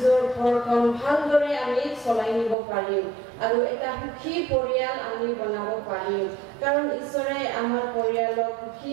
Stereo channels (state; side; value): drops out; left; at 2.6 s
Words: ঘৰখন ভালদৰে আমি চলাই নিব পাৰিম আৰু এটা সুখী পৰিয়াল আমি বনাব পাৰিম কাৰণ ঈশ্বৰে আমাৰ পৰিয়ালক সুখী